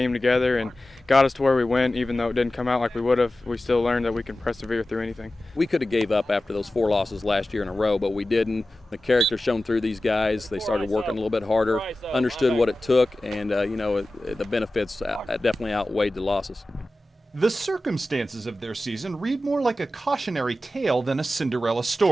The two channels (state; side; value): normal; both; correlation 0.95